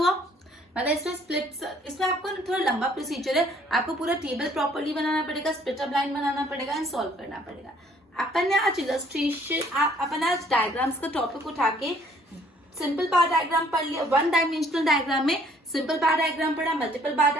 मतलब इसमें स्प्लिट, इसमें आपको थोड़ा लंबा प्रोसीजर है। आपको पूरा टेबल प्रॉपर्ली बनाना पड़ेगा, स्प्लिट अप लाइन बनाना पड़ेगा एंड सॉल्व करना पड़ेगा। अपन ने आज इलस्ट्रेशन, अपन आज डायग्राम्स का टॉपिक उठा के सिंपल बार डायग्राम पढ़ लिया। वन डायमेंशनल डायग्राम में सिंपल बार डायग्राम पढ़ा, multiple bar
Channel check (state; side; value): normal; both; correlation 0.61